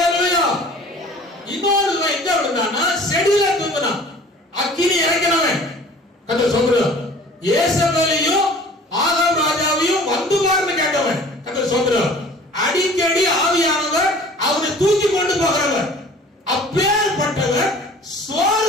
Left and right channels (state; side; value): normal; both; correlation 0.47